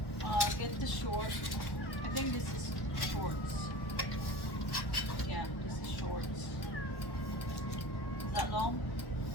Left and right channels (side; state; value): right; late; 1.1 ms